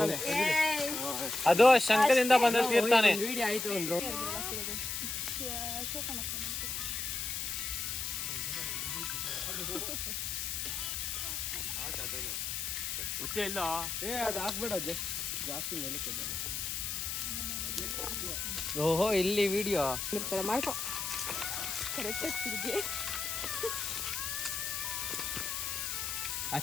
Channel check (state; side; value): noise; left; hiss, 2 dB below the sound